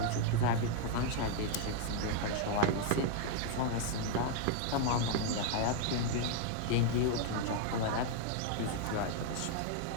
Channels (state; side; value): different; both; correlation 0.00